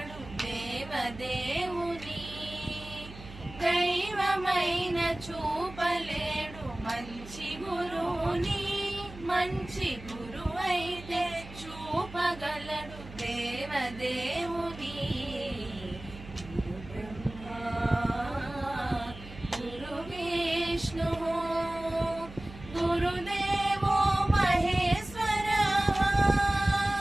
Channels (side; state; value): right; noise; hum, 15 dB below the sound